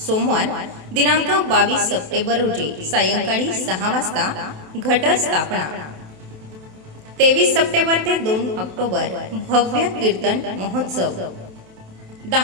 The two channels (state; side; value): late; left; 27 ms